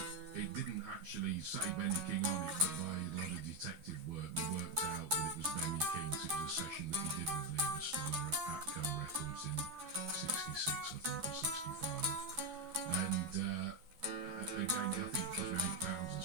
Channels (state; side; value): late; left; 12 ms